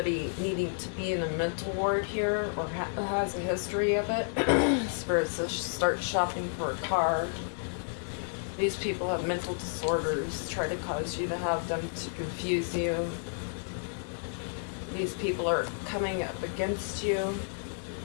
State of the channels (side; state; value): right; silent; digital silence